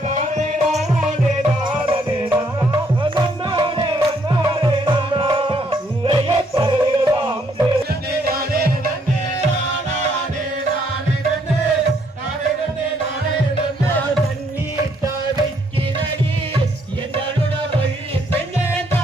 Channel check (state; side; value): normal; both; correlation 0.70